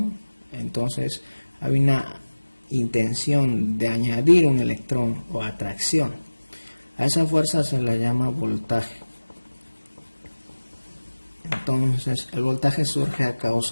entonces hay una intención de añadir un electrón o atracción. A esa fuerza se le llama voltaje. Entonces el voltaje surge a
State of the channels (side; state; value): both; inverted; correlation -1.00